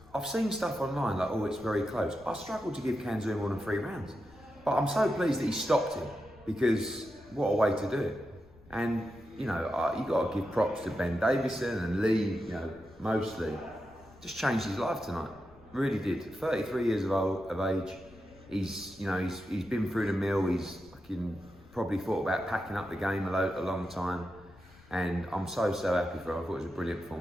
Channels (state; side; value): noise; left; rumble, 24 dB below the sound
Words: I've seen stuff online like, oh, it's very close. I struggled to give Kanzu more than 3 rounds. But I'm so pleased that he stopped him, because what a way to do it. And, you know, you got to give props to Ben Davison and Lee, mostly. Just changed his life tonight. Really did. 33 years of age. He's been through the mill. He's fucking probably thought about packing up the game a long time. And I'm so happy for him. I thought it was a brilliant